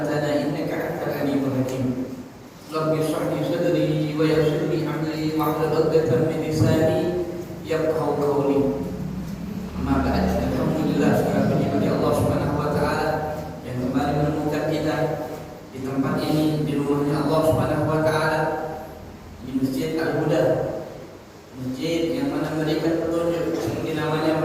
innaka antal alimul hakim. Rabbi shrah li sadri wa yassir li amri wahlul 'uqdatam min lisani yafqahu qawli. Amma ba'd. Alhamdulillah, segala puji bagi Allah Subhanahu wa taala yang kembali menemukan kita di tempat ini, di rumahnya Allah Subhanahu wa taala, di Masjid Al-Huda. Masjid yang mana memberikan petunjuk, seperti namanya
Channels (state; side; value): identical; both; correlation 1.00